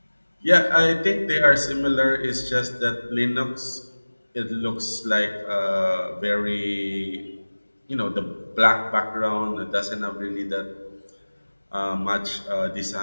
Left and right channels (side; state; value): both; inverted; correlation -1.00